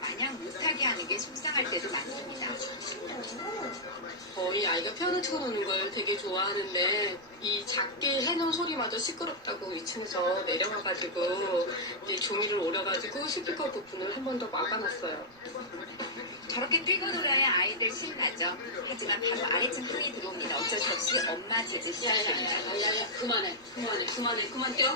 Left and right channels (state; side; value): noise; right; rumble, 28 dB below the sound